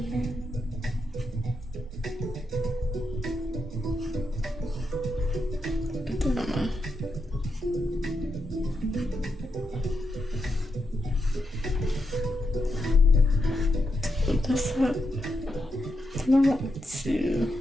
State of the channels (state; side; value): normal; both; correlation 0.84